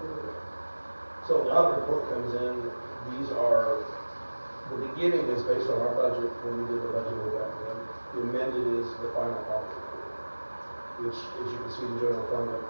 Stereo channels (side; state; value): both; inverted; correlation -1.00